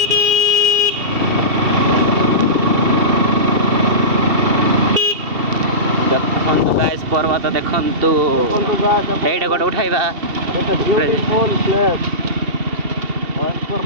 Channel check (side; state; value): left; late; 2.7 ms